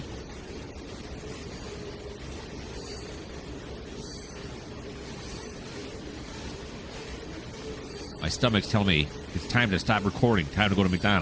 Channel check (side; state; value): both; identical; correlation 1.00